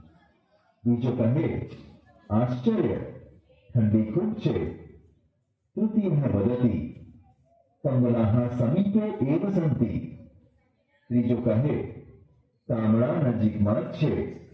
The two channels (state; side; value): identical; both; correlation 1.00